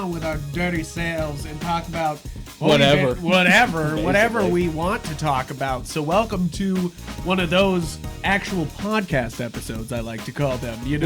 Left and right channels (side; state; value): both; identical; correlation 1.00